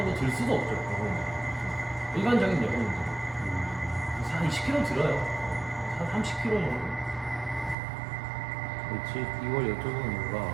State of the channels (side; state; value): left; drops out; at 7.8 s